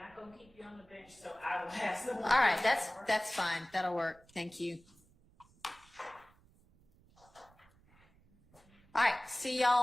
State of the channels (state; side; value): noise; right; rumble, 29 dB below the sound